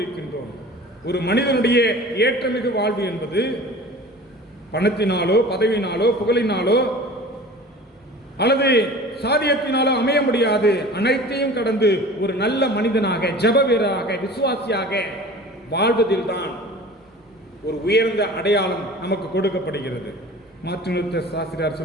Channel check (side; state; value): both; normal; correlation 0.41